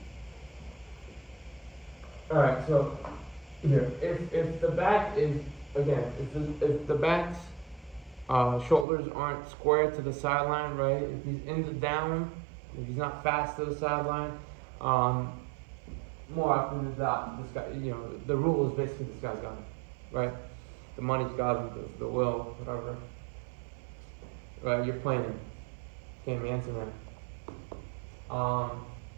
alright, so, here, if the back is, again, if the back's shoulders aren't square to the sideline, right? If he's in the down, if he's not fast to the sideline, more often than not, this guy, the rule is basically this guy's got him, right? The money's got him, the will, whatever. Right, you're playing him. Can't answer that. All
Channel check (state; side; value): drops out; left; at 8.8 s